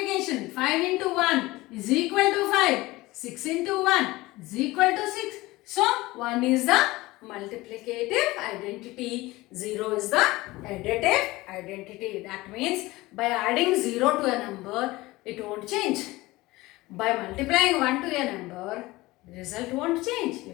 5 into 1 is equal to 5. 6 into 1 is equal to 6. So 1 is the multiplicative identity. 0 is the additive identity. That means by adding 0 to a number, it won't change. By multiplying 1 to a number, the result won't change. You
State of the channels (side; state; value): right; quieter; 19.9 dB